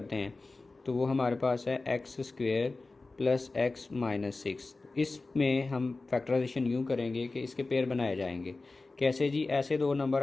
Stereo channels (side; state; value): right; quieter; 3.5 dB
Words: हैं, तो वो हमारे पास है x² + x - 6। इसमें हम फैक्टराइजेशन यूँ करेंगे कि इसके पेयर बनाए जाएंगे। कैसे जी? ऐसे दो